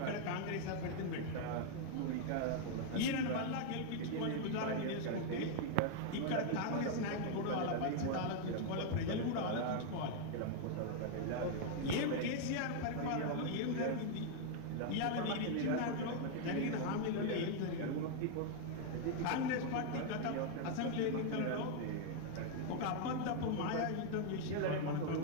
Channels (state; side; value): different; both; correlation 0.00